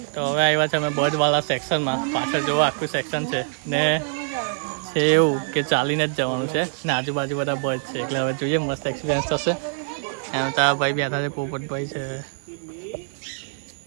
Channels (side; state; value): left; silent; 62 dB below the other